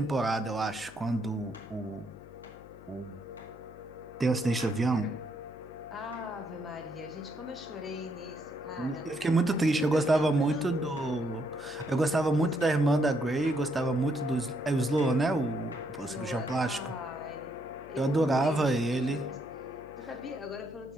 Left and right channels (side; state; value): left; noise; hum, 20 dB below the sound